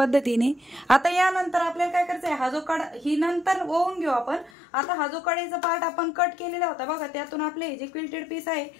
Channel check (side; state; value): right; drops out; at 4.5 s